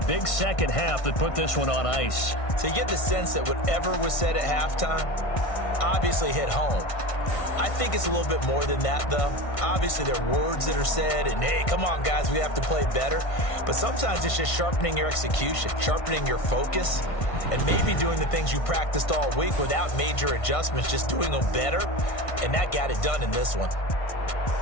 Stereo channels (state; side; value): late; right; 1.5 ms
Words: second half that put this one on ice. So you get the sense that whatever was said at halftime obviously hit home. I think it's a little bit more than that, though. Obviously, there are words that are said, and, hey, come on, guys, we have to play better. But sometimes it's just sharpening your execution, sharpening your focus, and maybe doing the things you practiced all week without major adjustments, just doing them better, and that got it done in this one.